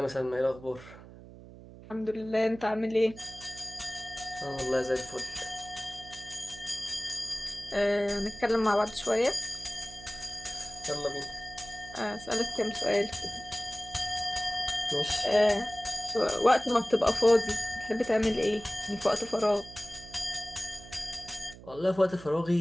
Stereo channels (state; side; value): noise; right; hum, 17 dB below the sound